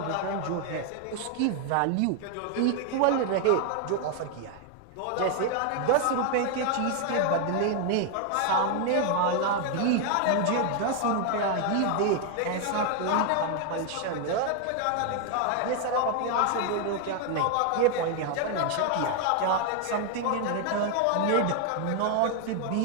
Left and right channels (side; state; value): both; different; correlation 0.00